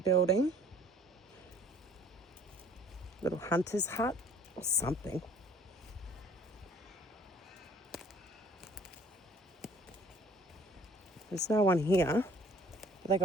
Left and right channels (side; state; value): both; normal; correlation 0.54